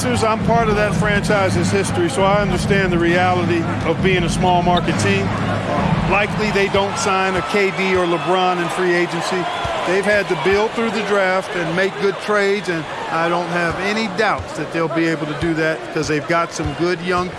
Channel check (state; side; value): identical; both; correlation 1.00